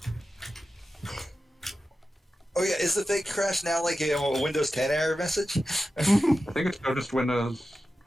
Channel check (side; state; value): both; normal; correlation 0.92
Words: Oh yeah, is the fake crash now like a Windows 10 error message? I think it's still just Windows.